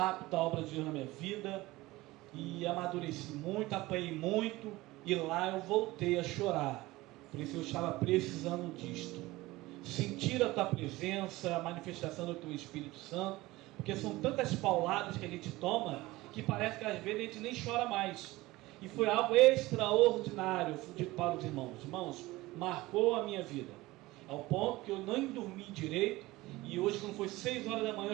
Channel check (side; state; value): left; quieter; 19.4 dB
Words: a obra de Deus na minha vida, e amadureci muito, apanhei muito, e lá eu voltei a chorar. Por isso eu estava precisando disto. Sentir a tua presença, a manifestação do teu Espírito Santo, porque são tantas pauladas que a gente toma, que parece que às vezes a gente nem chora mais. E foi algo extraordinário para os irmãos. Irmãos, marcou a minha vida, ao ponto que eu nem dormi direito. E hoje, quando foi 6 horas da manhã, eu